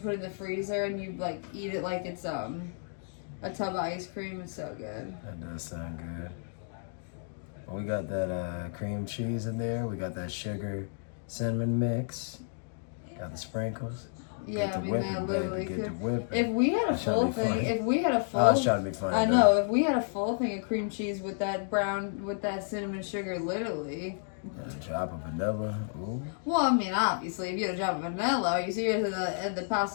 it in the freezer, and you like eat it like it's a tub of ice cream. It's so good. That does sound good. Well, we got that cream cheese in there. We got that sugar cinnamon mix. Got the sprinkles. Yeah, I mean that literally Get the could. whipping. If we had a I'm trying to full be thing, funny. if we had a full, I was trying to be funny. I know. If we had a full thing of cream cheese with that cinnamon sugar, literally. A drop of vanilla. Ooh. Well, I mean, obviously, if you had a drop of vanilla, are you serious? The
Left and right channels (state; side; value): silent; right; digital silence